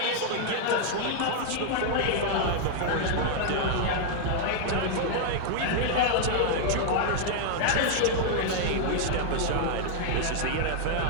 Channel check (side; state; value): both; different; correlation -0.01